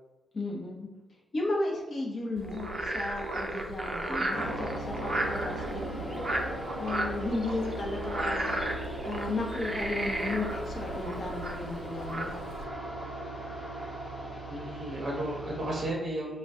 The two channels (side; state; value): both; normal; correlation 0.78